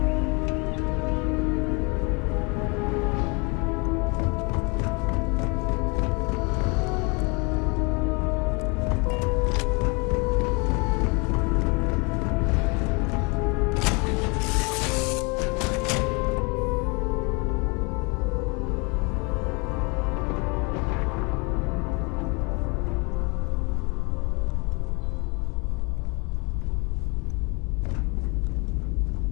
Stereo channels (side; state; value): right; quieter; 30.3 dB